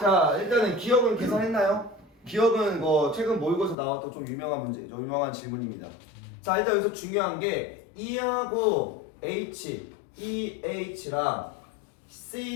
일단은 기억은 계산했나요? 기억은 뭐 최근 모의고사 나왔던 좀 유명한 질문입니다. 자, 일단 여기서 중요한 게 E하고 H, EH랑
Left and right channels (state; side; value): drops out; right; at 3.8 s